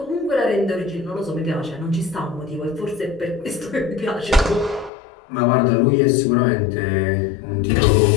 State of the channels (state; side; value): drops out; right; at 4.9 s